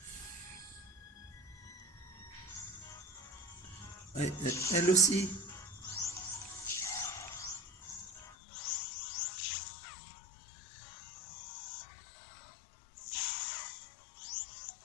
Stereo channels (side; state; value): right; drops out; at 8.3 s